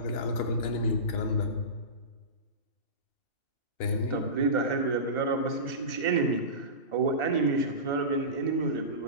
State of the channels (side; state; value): right; late; 2.7 ms